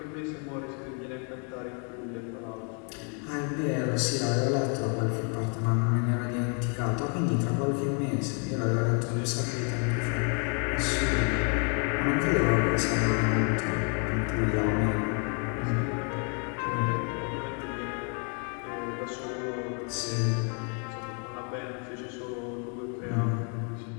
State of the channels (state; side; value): quieter; right; 38.8 dB